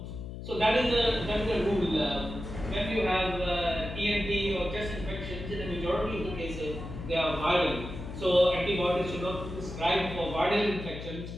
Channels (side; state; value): left; noise; hum, 9 dB below the sound